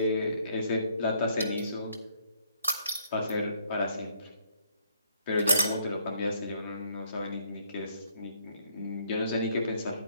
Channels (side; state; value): both; inverted; correlation -0.67